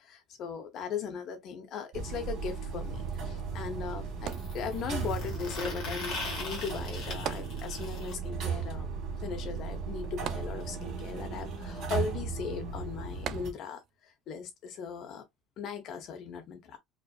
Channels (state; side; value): normal; both; correlation 0.46